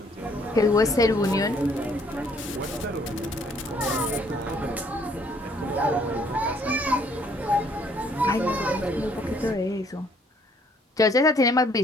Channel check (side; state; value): both; normal; correlation 0.63